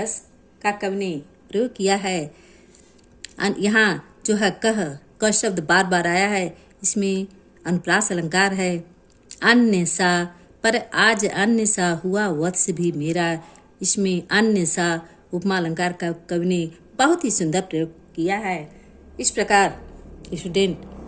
का कवि ने प्रयोग किया है। यहाँ जो है क शब्द बार बार आया है, इसमें अनुप्रास अलंकार है। अन्य सा, पर आज अन्य सा हुआ वत्स भी मेरा, इसमें अन्य सा उपमा अलंकार का कवि ने बहुत ही सुंदर प्रयोग किया है। इस प्रकार स्टूडेंट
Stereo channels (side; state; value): both; identical; correlation 1.00